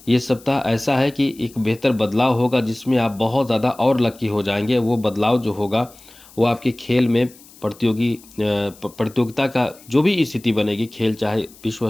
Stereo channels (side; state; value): left; noise; hiss, 24 dB below the sound